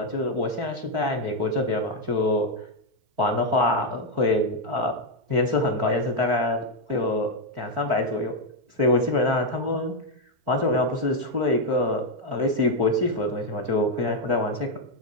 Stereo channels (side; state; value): left; late; 4.5 ms